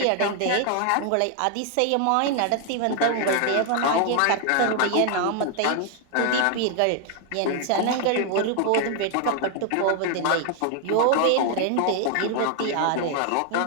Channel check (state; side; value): different; both; correlation 0.00